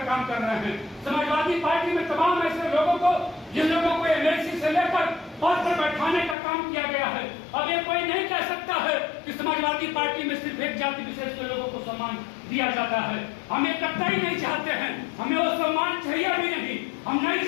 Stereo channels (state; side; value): drops out; right; at 6.4 s